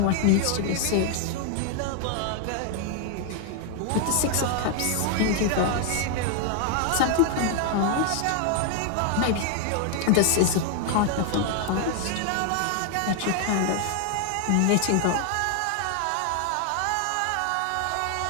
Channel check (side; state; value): both; different; correlation 0.00